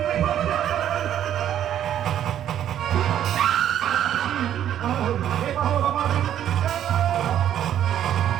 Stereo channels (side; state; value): left; quieter; 10.6 dB